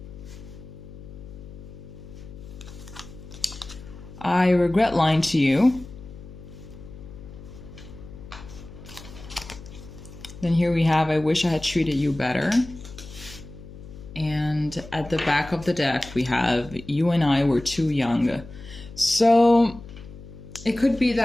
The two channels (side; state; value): left; noise; hum, 16 dB below the sound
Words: I regret lying to you. Then here we have, I wish I had treated you better. And at the back of the deck, we have, you and I were too young. So it could be